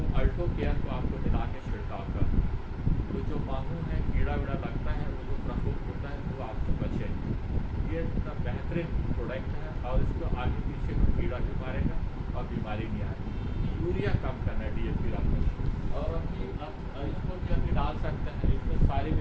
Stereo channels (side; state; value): both; identical; correlation 1.00